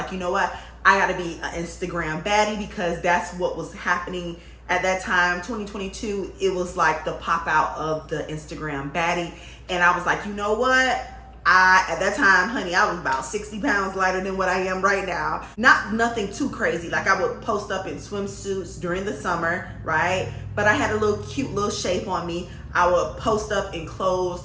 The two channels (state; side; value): identical; both; correlation 1.00